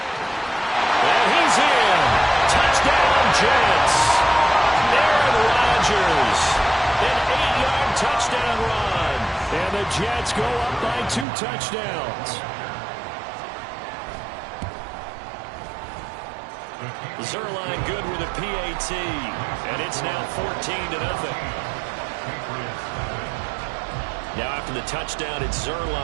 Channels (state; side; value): drops out; left; at 11.2 s